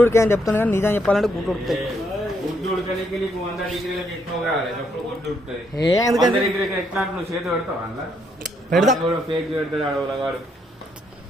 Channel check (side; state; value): both; normal; correlation 0.74